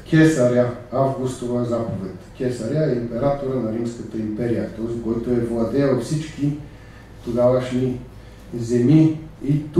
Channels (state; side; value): identical; both; correlation 1.00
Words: Кесаря Августова заповед. Кесаря е императора на Римската империя, този, който е владеел всички тогавашни земи и